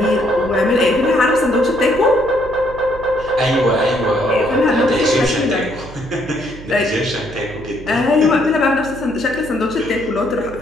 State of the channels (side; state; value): right; noise; hum, 16 dB below the sound